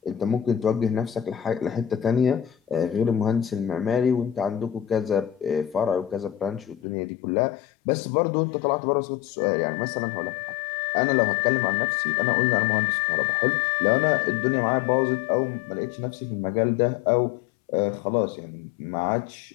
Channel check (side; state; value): right; drops out; at 6.8 s